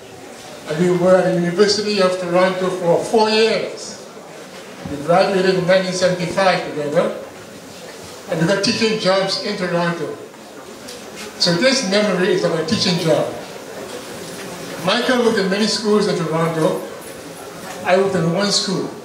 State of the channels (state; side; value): identical; both; correlation 1.00